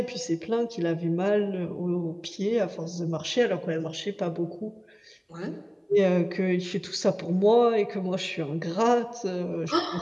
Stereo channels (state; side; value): identical; both; correlation 1.00